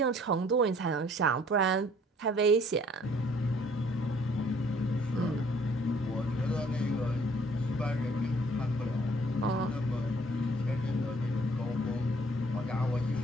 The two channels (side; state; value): both; normal; correlation 0.58